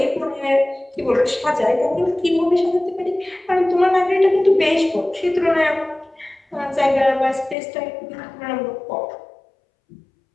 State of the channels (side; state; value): right; drops out; at 7.6 s